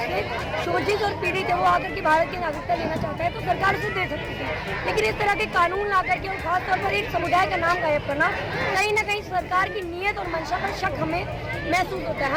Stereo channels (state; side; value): identical; both; correlation 1.00